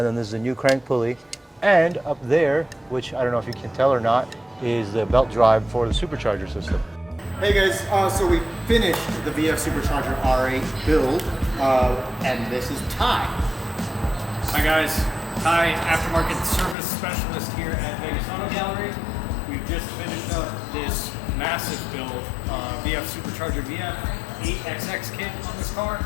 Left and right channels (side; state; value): right; drops out; at 16.8 s